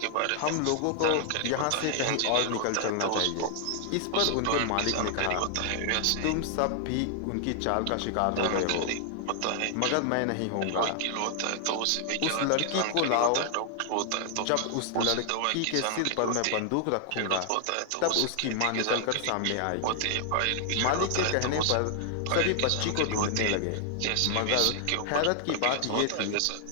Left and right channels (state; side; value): different; both; correlation 0.00